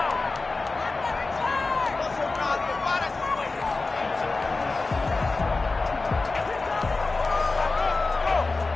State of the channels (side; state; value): right; quieter; 3.6 dB